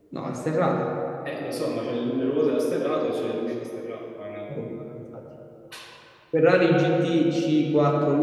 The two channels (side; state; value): both; identical; correlation 1.00